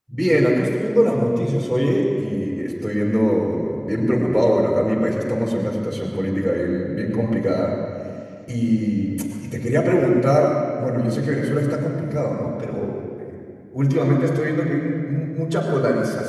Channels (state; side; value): identical; both; correlation 1.00